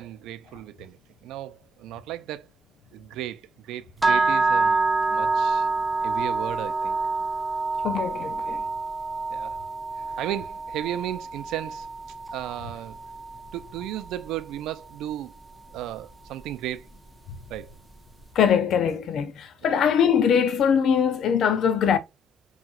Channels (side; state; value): both; normal; correlation 0.68